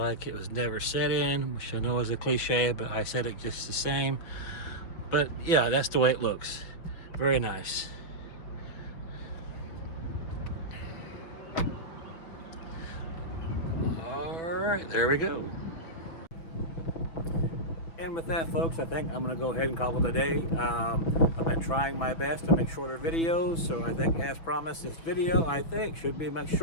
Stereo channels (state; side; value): late; right; 6.1 ms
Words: it was never set in, which I know is a cliche, but I said it just the same. But yeah, that's the way it looks. Very nice. All right, there we go. And with that, folks, I think I'm going to go ahead and call it a day. I've been trying my best to make shorter videos, so I think, as promised, this video, I think, should be much